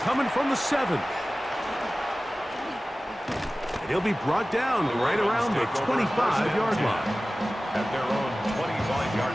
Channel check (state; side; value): normal; both; correlation 0.97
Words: from the 7. And he'll be brought down right around the 25-yard line. At their own 25-yard